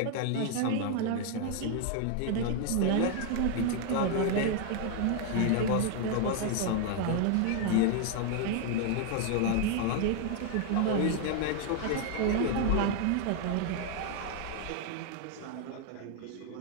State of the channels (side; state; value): both; different; correlation 0.00